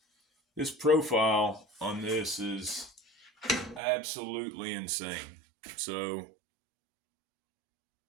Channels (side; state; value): left; drops out; at 3.8 s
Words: profile on this is absolutely insane. So